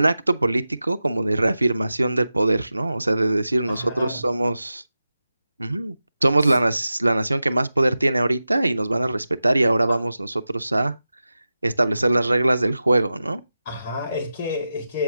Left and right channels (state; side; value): inverted; both; correlation -0.93